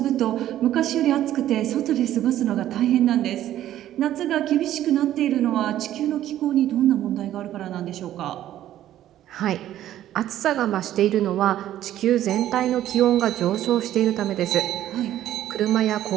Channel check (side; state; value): left; quieter; 12.6 dB